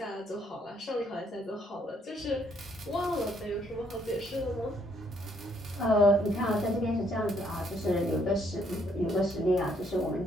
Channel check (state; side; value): normal; both; correlation 0.69